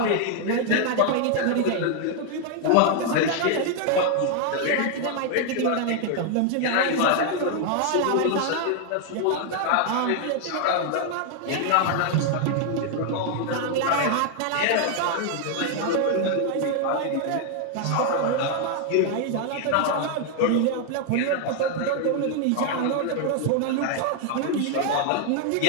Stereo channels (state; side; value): different; both; correlation 0.00